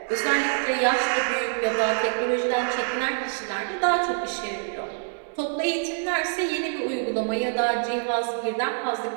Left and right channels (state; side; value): silent; left; digital silence